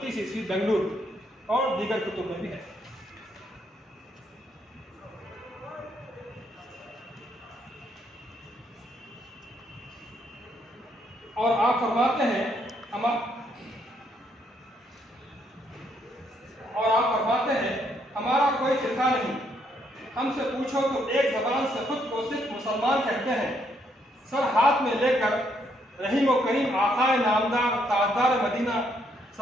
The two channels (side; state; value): both; normal; correlation 0.73